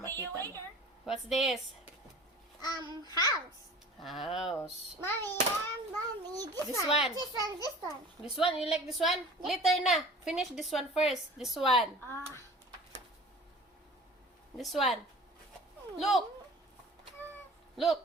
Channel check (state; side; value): normal; both; correlation 0.43